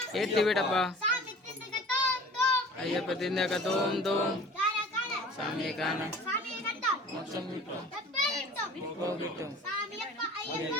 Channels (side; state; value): both; normal; correlation 0.43